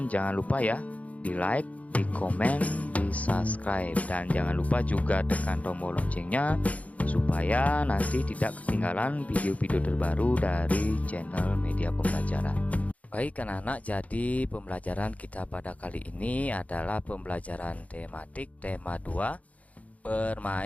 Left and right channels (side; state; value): right; late; 0.069 ms